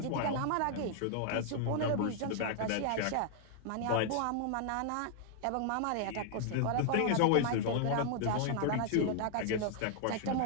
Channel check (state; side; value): different; both; correlation 0.00